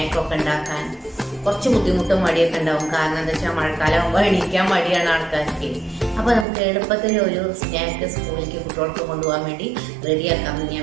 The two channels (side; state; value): left; drops out; at 6.5 s